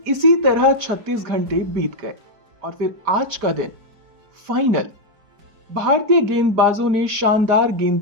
इसी तरह 36 घंटे बीत गए और फिर आज का दिन, फाइनल। भारतीय गेंदबाजों ने शानदार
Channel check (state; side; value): late; left; 5.1 ms